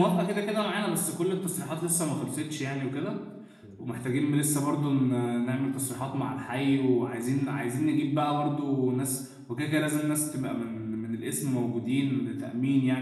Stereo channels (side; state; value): both; identical; correlation 1.00